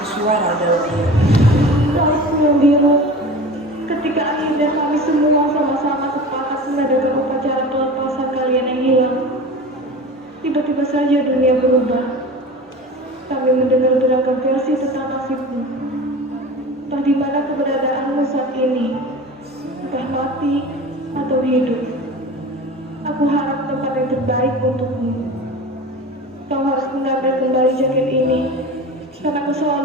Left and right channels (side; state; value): both; normal; correlation 0.34